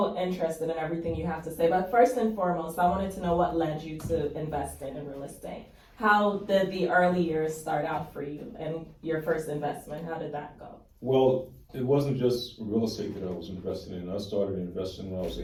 interested in everything you have to say. But first and foremost, I wanted to know what led you to investing in real estate. How did the early years start out for you and your first investment? How did that go? Well, it wasn't just real estate that I was invested in. I started investing when I was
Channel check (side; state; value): both; identical; correlation 1.00